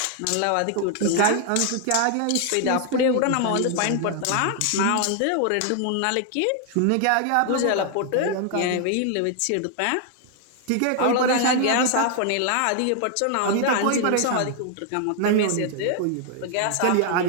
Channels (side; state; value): both; different; correlation 0.00